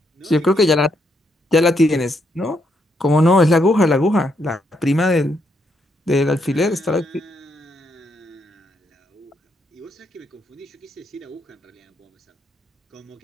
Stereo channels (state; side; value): normal; both; correlation 0.76